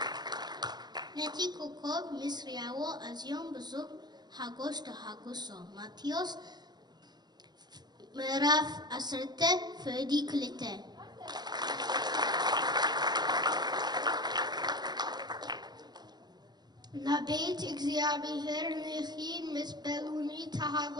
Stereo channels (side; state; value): left; late; 0.20 ms